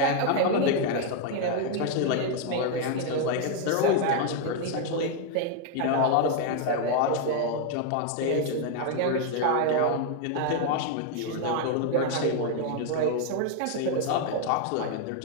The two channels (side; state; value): both; different; correlation 0.00